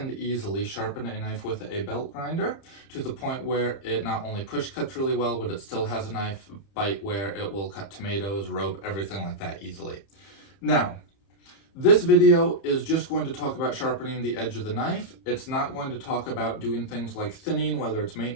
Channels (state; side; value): late; right; 31 ms